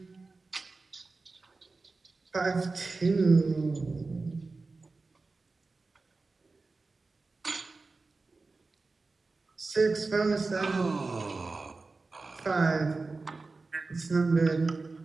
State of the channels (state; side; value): quieter; left; 3.8 dB